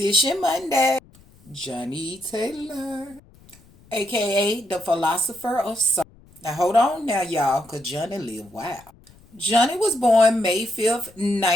Monday, Johnnie Taylor, aka the philosopher of soul. Now hold on now, y'all, because Johnnie lived wild. Johnnie was born May 5th,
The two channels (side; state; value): left; noise; rumble, 27 dB below the sound